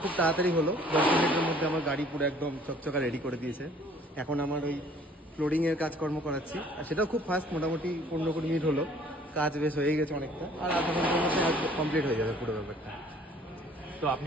তাড়াতাড়ি হলো, 10 মিনিটের মধ্যে আমার গাড়ি পুরো একদম চকচকা রেডি করে দিয়েছে। এখন আমার ওই ফ্লোরিংয়ের কাজকর্ম করাচ্ছি, আর সেটাও খুব ফাস্ট, মোটামুটি 15-20 মিনিট হলো, কাজ বেশ হয়ে গেছে অনেকটা, আর আধা ঘন্টার মধ্যে কমপ্লিট হয়ে যাবে পুরো ব্যাপারটা। তো আপনি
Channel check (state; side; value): normal; both; correlation 0.56